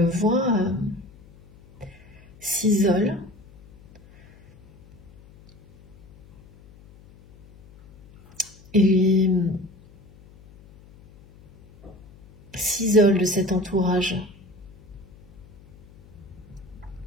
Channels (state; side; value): noise; left; hum, 24 dB below the sound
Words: vois, s'isole. Et s'isole de cet entourage.